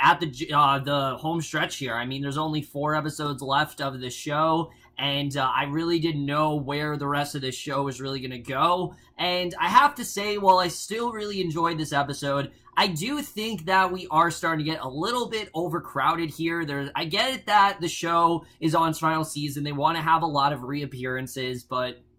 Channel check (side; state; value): both; identical; correlation 1.00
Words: at the home stretch here. I mean, there's only 4 episodes left of the show, and I really didn't know where the rest of this show was really going to go, and I have to say, while I still really enjoyed this episode, I do think that we are starting to get a little bit overcrowded here. I get it that the show is on its final season. They want to have a lot of reappearances, but